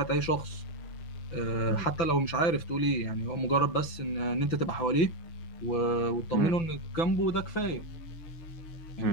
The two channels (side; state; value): right; late; 6.0 ms